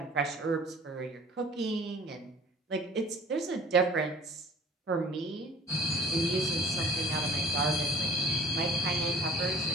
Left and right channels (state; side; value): normal; both; correlation 0.47